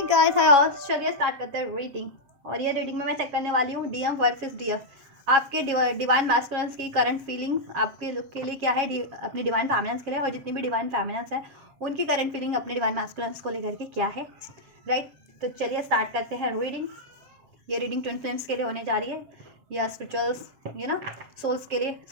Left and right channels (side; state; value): left; late; 7.6 ms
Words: guys hi, चलिए start करते हैं रीडिंग। और ये रीडिंग में मैं चेक करने वाली हूँ डीएम वर्सेस डीएफ। आपके डिवाइन मैस्कुलिन्स की करंट फीलिंग आपके लुक के लिए क्या है, अपने डिवाइन फेमिनिन्स के लिए, और जितनी भी डिवाइन फेमिनिन्स हैं उनकी करंट फीलिंग अपने डिवाइन मैस्कुलिन्स को लेकर के क्या है, राइट। तो चलिए स्टार्ट करते हैं रीडिंग। ये रीडिंग ट्विन फ्लेम्स के लिए होने जा रही है, या स्पिरिचुअल्स सोल्स के लिए,